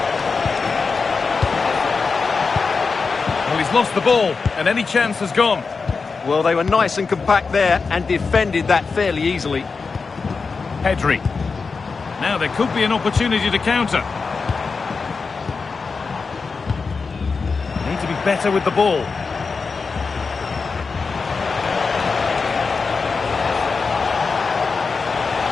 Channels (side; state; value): right; quieter; 4.7 dB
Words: Well, he's lost the ball, and any chance has gone. Well, they were nice and compact there and defended that fairly easily. Pedri. Now there could be an opportunity to counter. Need to be better with the ball.